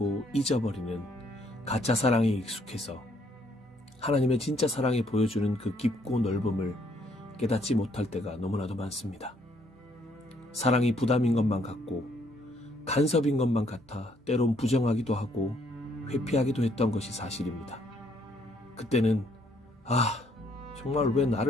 잊어버리는 가짜 사랑에 익숙해서 하나님의 진짜 사랑이 보여주는 그 깊고 넓음을 깨닫지 못할 때가 너무나도 많습니다. 사랑이 부담인 것만 같고 간섭인 것만 같아 때론 부정하기도 하고 회피하기도 했던 것이 사실입니다. 그때는 정말 왜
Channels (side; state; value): both; normal; correlation 0.68